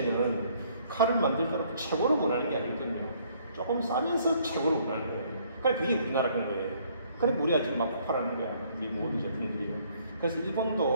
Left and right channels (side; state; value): both; inverted; correlation -0.63